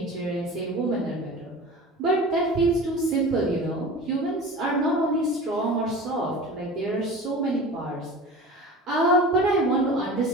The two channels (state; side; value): normal; both; correlation 0.36